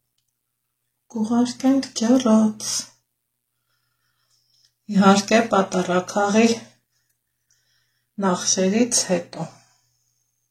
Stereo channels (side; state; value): both; identical; correlation 1.00